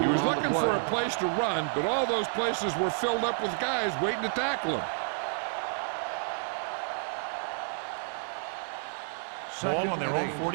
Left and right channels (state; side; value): silent; left; 58 dB below the other